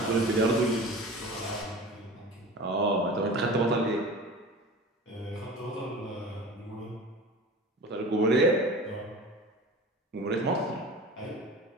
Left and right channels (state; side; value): normal; both; correlation 0.36